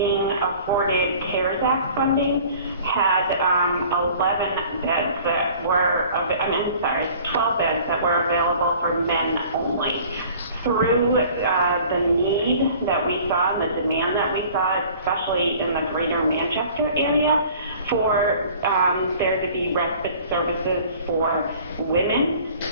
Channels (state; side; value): inverted; both; correlation -0.49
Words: afforded CARES Act funding, had 11 beds that were, 12 beds that were available for men only. Through the need that we saw and the demand that we saw, especially in the greater Manchester area, for there to be respite services for women,